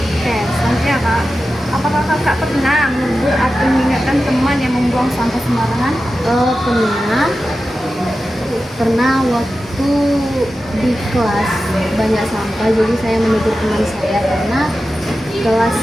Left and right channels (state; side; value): normal; both; correlation 0.93